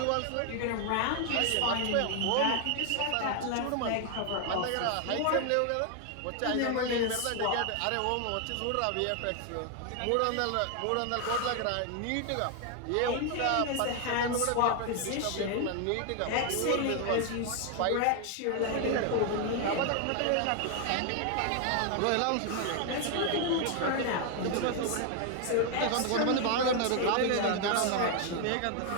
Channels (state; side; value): different; both; correlation 0.00